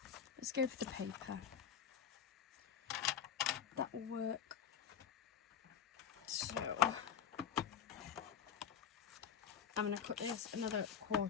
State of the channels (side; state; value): right; quieter; 8.2 dB